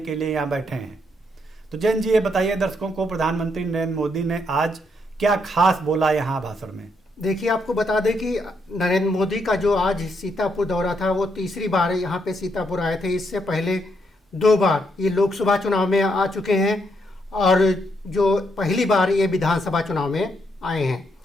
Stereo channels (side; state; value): both; normal; correlation 0.76